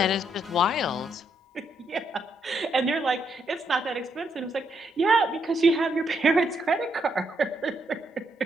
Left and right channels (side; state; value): both; normal; correlation 0.76